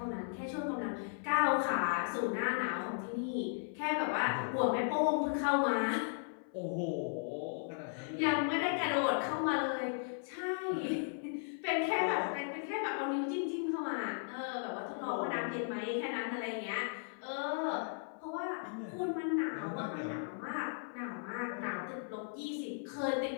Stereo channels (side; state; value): right; silent; 54 dB below the other